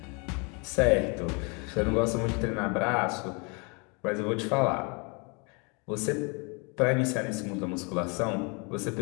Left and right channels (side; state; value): right; quieter; 32.3 dB